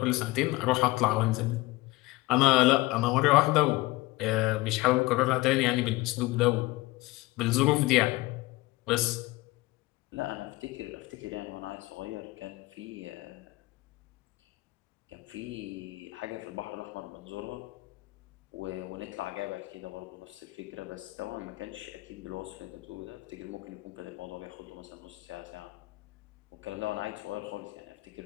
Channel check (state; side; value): quieter; right; 20.4 dB